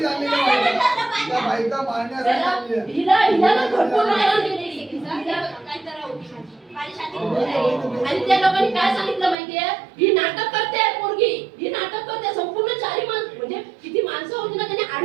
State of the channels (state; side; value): drops out; left; at 9.3 s